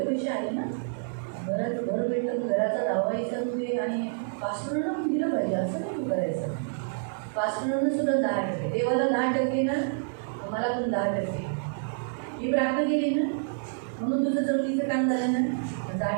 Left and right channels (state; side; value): silent; left; 59 dB below the other